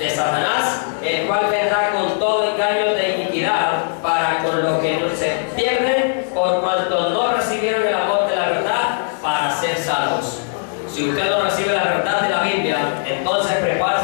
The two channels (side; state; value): right; silent; 66 dB below the other